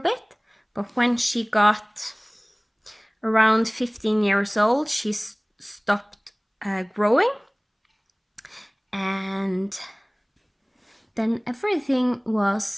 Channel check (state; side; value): identical; both; correlation 1.00